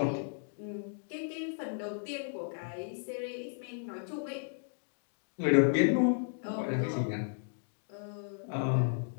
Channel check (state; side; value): silent; right; digital silence